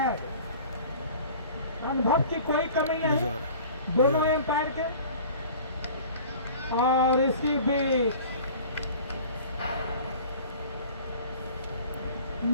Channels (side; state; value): both; inverted; correlation -0.44